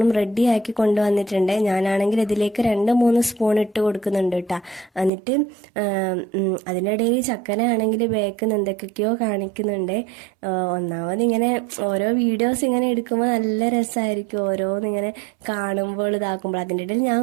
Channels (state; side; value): drops out; left; at 5.1 s